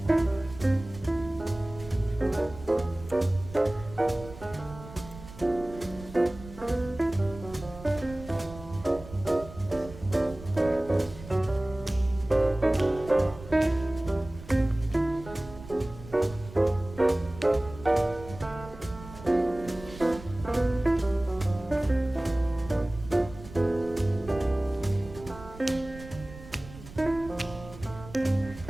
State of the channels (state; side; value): noise; right; rumble, 16 dB below the sound